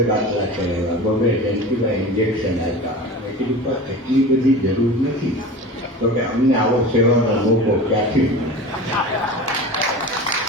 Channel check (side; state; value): both; normal; correlation 0.33